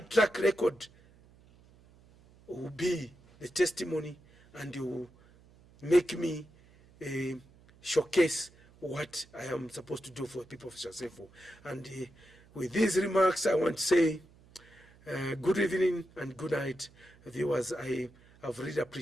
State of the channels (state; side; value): noise; right; hum, 26 dB below the sound